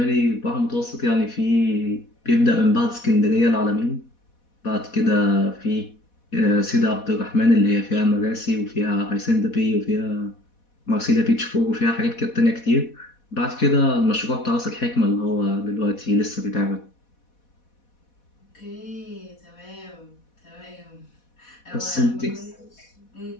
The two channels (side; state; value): right; late; 4.1 ms